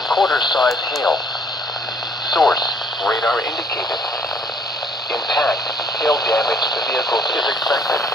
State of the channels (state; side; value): normal; both; correlation 0.62